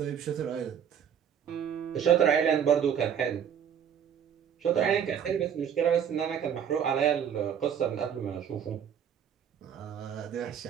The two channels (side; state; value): left; quieter; 8.4 dB